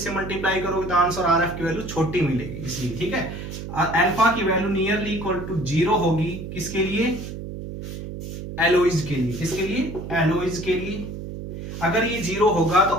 मल्टीप्लाई करोगे तो आंसर आरएफ की वैल्यू छोटी मिलेगी, इसलिए। ठीक है, अल्फा की वैल्यू नियरली इक्वल टू 0 होगी, किसके लिए, एलोइज के लिए। किसके लिए, एलोइज के लिए। अगर ये 0 होगा तो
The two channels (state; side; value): noise; right; hum, 9 dB below the sound